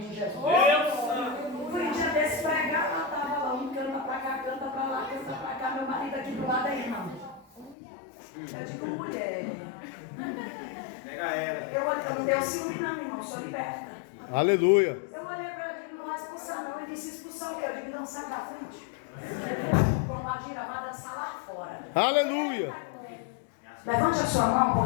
de Jesus. Fui um dia desse pregar, ela estava lá, um canta para cá, canta para lá, canta para cá. Meu marido aqui do lado é irmão. Eu digo: mulher. Pega ela. Eu não deu ciúme não, irmão, sou liberta. Aleluia. Eu olhei para ela e digo: não vai expulsar não. Ele disse: expulsar o quê? Eu digo: não, sai da frente. Vai dançar lá fora. Aleluia. Levante a sua mão,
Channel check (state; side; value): drops out; right; at 7.8 s